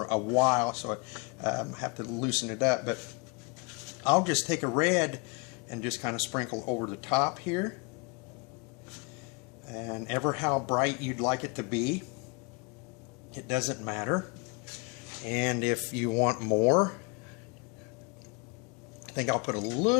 a while, so I have to loosen it up, but I'll just take a red and just kind of sprinkle over the top here, and ever how bright you'd like it to be, it doesn't matter. And if you want more, I think I'll put a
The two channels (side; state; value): right; quieter; 31.2 dB